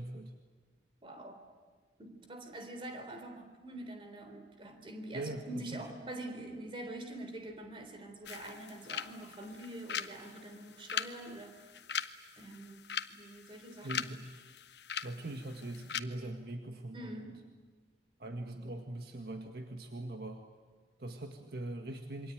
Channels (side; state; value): both; normal; correlation 0.39